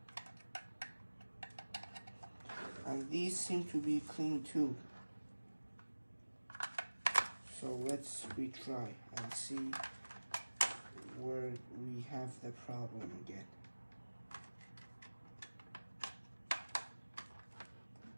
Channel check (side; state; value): both; inverted; correlation -1.00